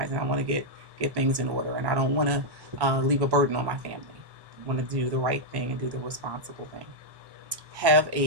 and I want to get things in order, and I don't want to leave a burden on my family. I want to do the right thing and do the responsible thing. Have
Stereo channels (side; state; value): left; late; 1.1 ms